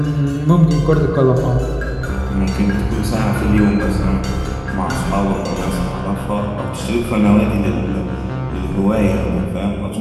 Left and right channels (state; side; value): identical; both; correlation 1.00